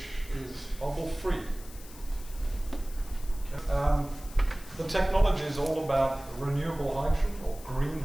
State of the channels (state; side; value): noise; left; hiss, 18 dB below the sound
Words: is bubble-free. The technology is all about renewable hydrogen or green